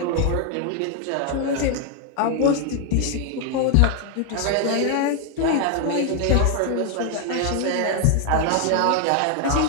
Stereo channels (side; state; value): both; different; correlation 0.01